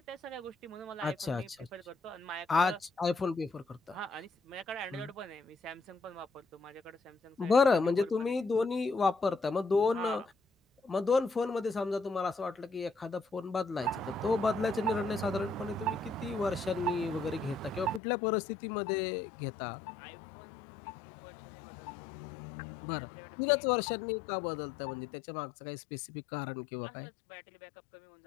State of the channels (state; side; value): drops out; right; at 18.0 s